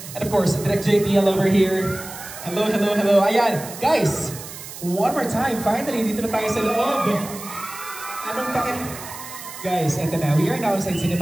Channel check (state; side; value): noise; right; hiss, 13 dB below the sound